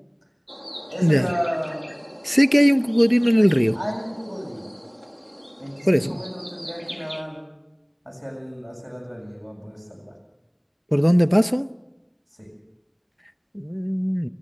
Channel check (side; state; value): both; identical; correlation 1.00